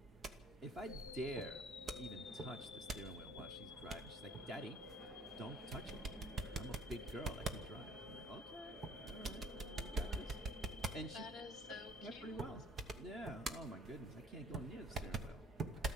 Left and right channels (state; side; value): normal; both; correlation 0.55